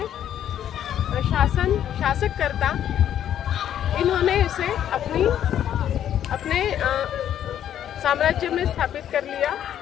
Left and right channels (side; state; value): right; quieter; 10.4 dB